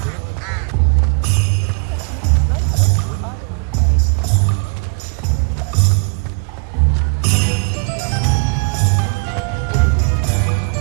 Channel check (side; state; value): left; quieter; 37.8 dB